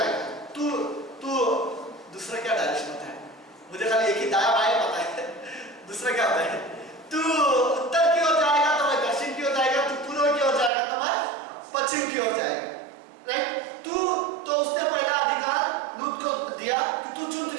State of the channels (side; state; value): left; drops out; at 10.7 s